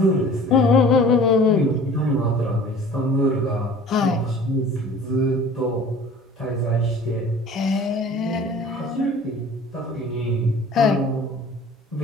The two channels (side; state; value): both; normal; correlation 0.45